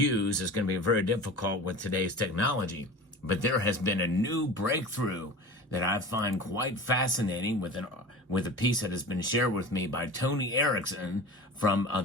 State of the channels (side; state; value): both; normal; correlation 0.35